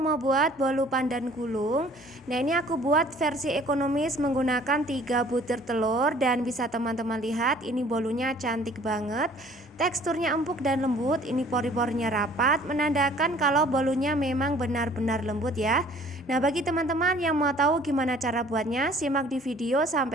mau buat bolu pandan gulung. Nah, ini aku buat versi ekonomis menggunakan 3 butir telur. Dan bisa teman-teman lihat, ini bolunya cantik banget. Teksturnya empuk dan lembut. Ini pori-porinya rapat, menandakan kalau bolunya memang benar-benar lembut ya. Nah, bagi teman-teman yang mau tahu gimana cara buatnya, simak di video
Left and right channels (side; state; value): both; normal; correlation 0.53